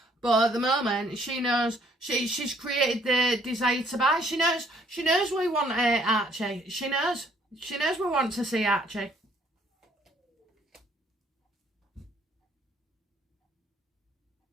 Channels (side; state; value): both; normal; correlation 0.64